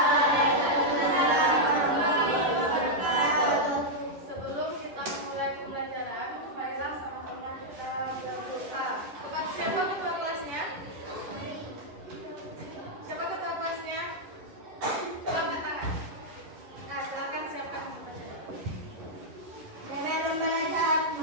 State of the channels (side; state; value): left; late; 11 ms